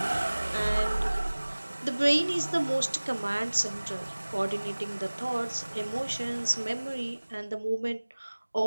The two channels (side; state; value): both; inverted; correlation -1.00